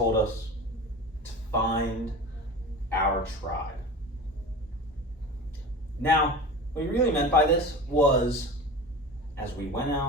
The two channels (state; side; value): normal; both; correlation 0.33